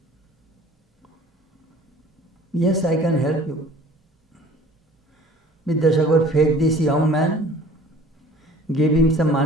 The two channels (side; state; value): both; normal; correlation 0.48